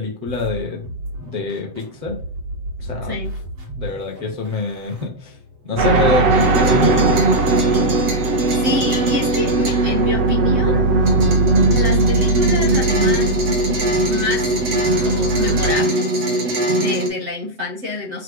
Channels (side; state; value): left; late; 7.9 ms